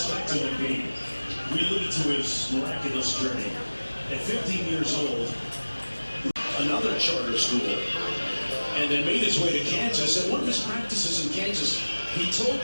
Back to Embiid. We alluded to his miraculous journey. At 15 years old, another charter school, and then made his way to Kansas. At one of his practices in Kansas, he told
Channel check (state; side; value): inverted; both; correlation -1.00